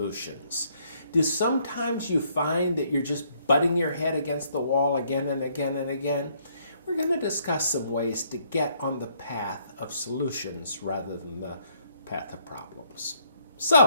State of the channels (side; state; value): both; inverted; correlation -0.69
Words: Do sometimes you find that you're just butting your head against the wall again and again and again? We're going to discuss some ways to get on the path of solutions rather than the path of problems.